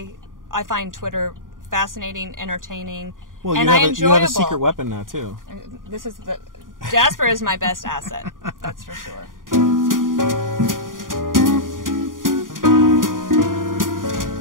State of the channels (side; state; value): left; late; 0.90 ms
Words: find Twitter fascinating, entertaining, Well, and you have enjoyable. you have a secret weapon now too. Jasper is my best asset. That's for sure.